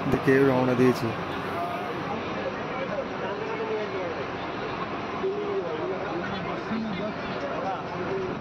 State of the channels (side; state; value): both; identical; correlation 1.00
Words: দিকে রওনা দিয়েছি।